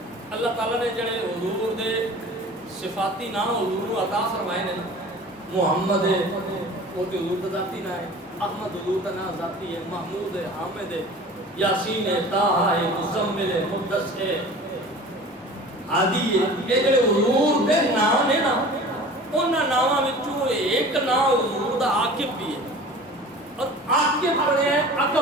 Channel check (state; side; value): normal; both; correlation 0.41